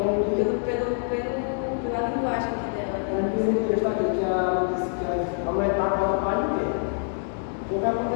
pela linguagem aqui dela. Como diz o texto aqui, que a mulher está agora para ninguém. O que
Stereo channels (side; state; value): right; silent; digital silence